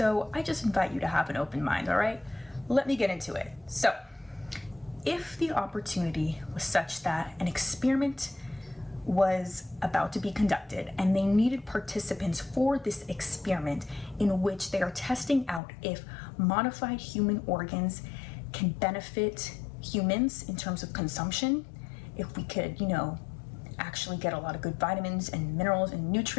I just invite you to have an open mind, all right? Let me get into it. So, if the opportunity was such that an experiment was about to be conducted and they needed participants for this experiment in which they are testing out if modified human organs can benefit humans in terms of consumption, if we could, you know, actually get a lot of good vitamins and minerals and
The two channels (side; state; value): right; drops out; at 15.6 s